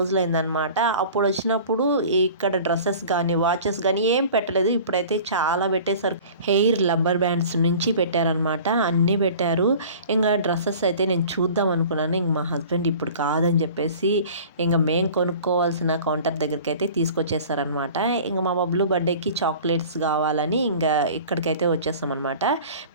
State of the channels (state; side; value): inverted; both; correlation -0.43